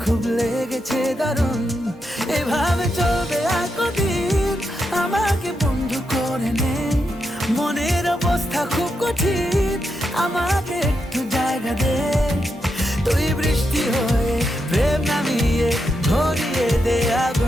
খুব লেগেছে দারুণ। এভাবে চলবে আর কদিন, আমাকে বন্ধু করে নে, মনের অবস্থা খুব কঠিন, আমাকে একটু জায়গা দে। তুই বৃষ্টি হয়ে প্রেম নামিয়ে ধরিয়ে দে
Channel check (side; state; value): both; normal; correlation 0.84